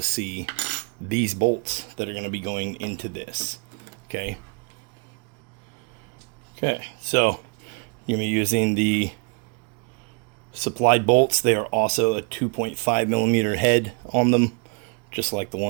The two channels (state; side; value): quieter; left; 34.8 dB